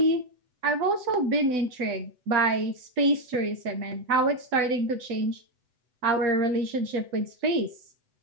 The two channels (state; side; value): late; left; 8.0 ms